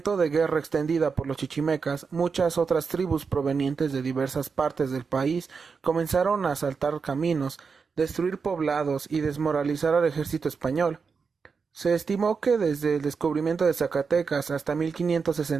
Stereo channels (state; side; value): quieter; left; 5.3 dB